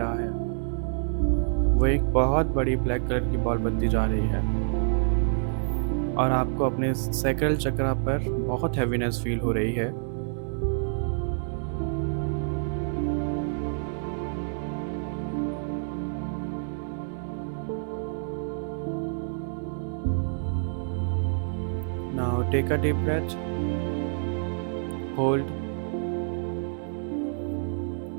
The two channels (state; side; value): silent; left; 60 dB below the other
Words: है, वो एक बहुत बड़ी ब्लैक कलर की बॉल बनती जा रही है और आपको अपने सैक्रल चक्र पर बहुत हैवीनेस फील हो रही है। Now take a deep breath, hold